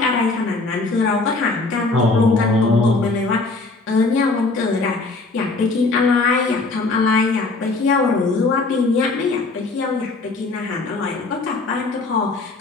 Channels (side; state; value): right; quieter; 3.5 dB